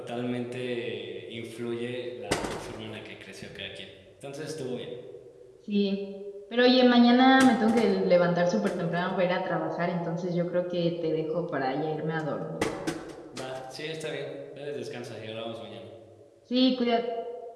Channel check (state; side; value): identical; both; correlation 1.00